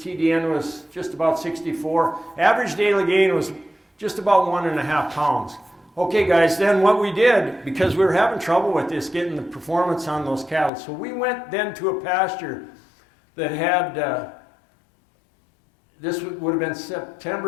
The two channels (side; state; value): right; drops out; at 10.7 s